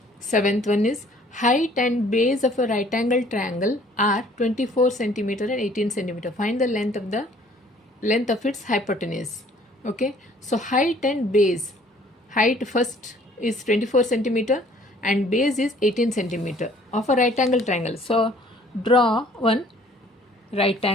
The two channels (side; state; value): both; normal; correlation 0.57